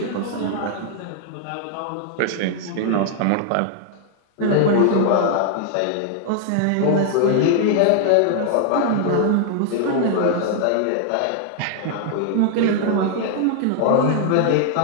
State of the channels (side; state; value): both; different; correlation 0.00